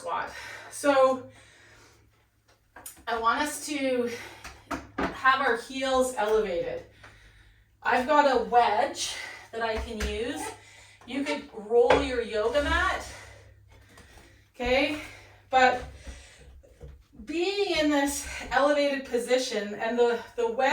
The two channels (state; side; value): identical; both; correlation 1.00